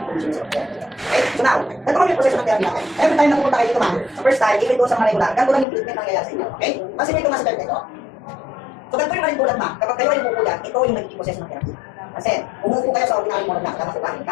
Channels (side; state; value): right; drops out; at 5.7 s